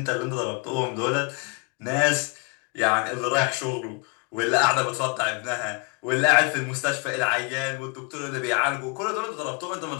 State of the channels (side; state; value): right; quieter; 32.1 dB